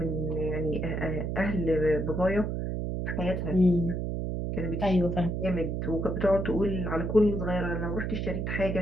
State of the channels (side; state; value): right; noise; hum, 2 dB below the sound